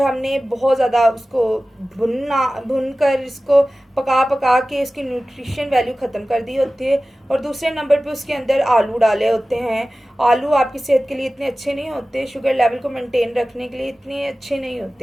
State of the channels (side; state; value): both; normal; correlation 0.96